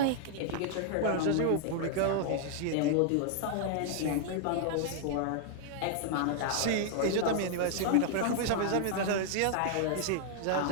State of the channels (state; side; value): different; both; correlation 0.00